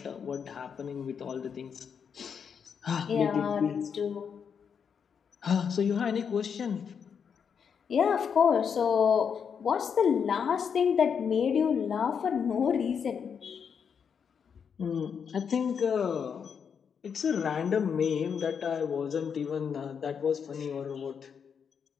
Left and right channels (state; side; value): quieter; right; 6.9 dB